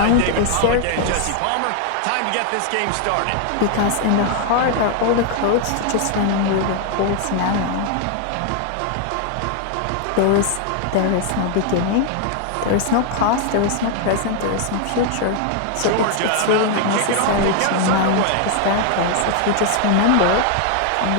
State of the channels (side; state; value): both; different; correlation 0.00